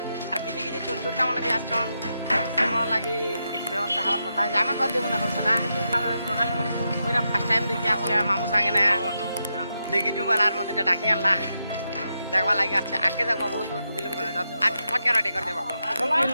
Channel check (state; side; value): inverted; both; correlation -0.85